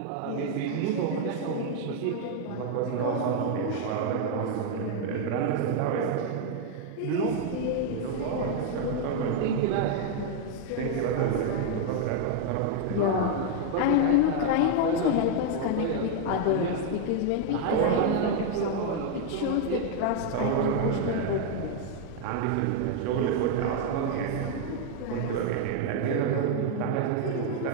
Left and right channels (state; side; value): different; both; correlation 0.00